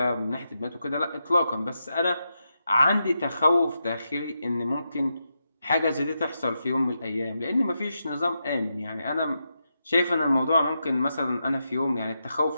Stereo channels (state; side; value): inverted; both; correlation -0.86